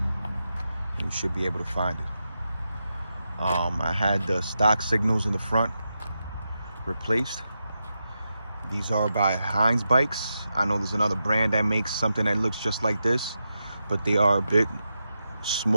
and you should be able to find it. I had the stock signals in the front replaced. These are by Heinz Bikes. I know there's another brand that makes something that looks just like this, but they are a bit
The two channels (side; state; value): both; inverted; correlation -0.88